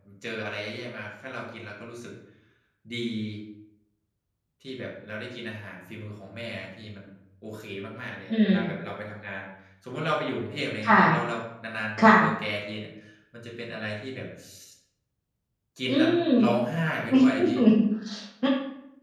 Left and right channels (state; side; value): identical; both; correlation 1.00